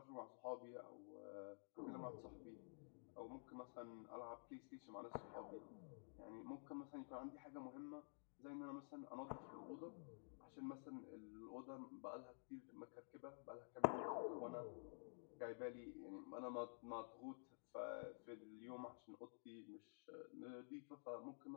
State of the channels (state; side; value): silent; right; digital silence